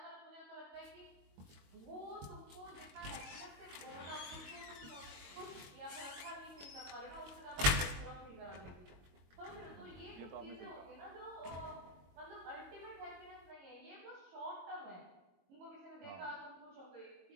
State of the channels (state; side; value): late; left; 22 ms